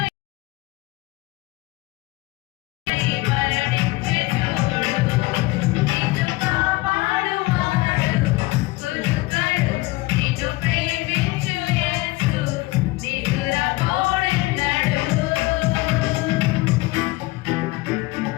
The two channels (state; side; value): quieter; right; 20.9 dB